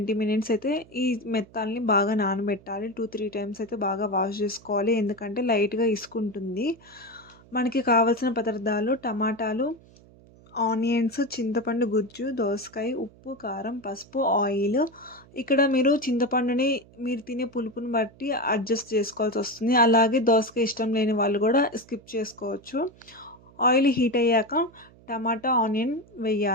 మినిట్స్ అయితే ఈ మెత్తాల్ని బాగా నానబెట్టాలి. 2, 3 టైమ్స్ అయితే బాగా వాష్ చేసుకోవాలి. ఎందుకంటే లైట్‌గా ఇసుకుంటుంది. మనకి కావాల్సిన పదార్థాలు టమాటాలు, ఆనియన్స్, చింతపండు గుజ్జు, దోసకాయ, ఉప్పు, కారం, పసుపు, ఆయిల్. ఇక్కడ మీరు చింతపండుని మీరు తినే పులుపుని బట్టి అడ్జస్ట్ చేసుకోవాల్సొస్తుంది. అలాగే దోసకాయ ఇష్టం లేని వాళ్ళు గూడా స్కిప్ చేసుకోవచ్చు. ఆయిల్ హీట్ అయ్యాక టమాటా, ఆనియన్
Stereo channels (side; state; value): right; noise; hum, 25 dB below the sound